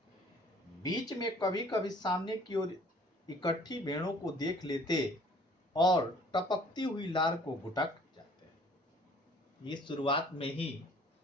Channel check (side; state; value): both; normal; correlation 0.55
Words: बीच में कभी कभी सामने की ओर इकट्ठी भेड़ों को देख लेते और टपकती हुई लार को घुटक जाते। ये शुरुआत में ही